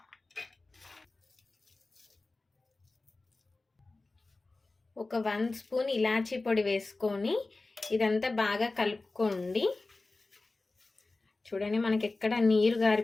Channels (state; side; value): quieter; right; 3.3 dB